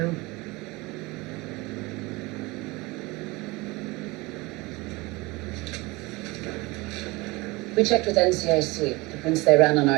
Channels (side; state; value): left; quieter; 22.9 dB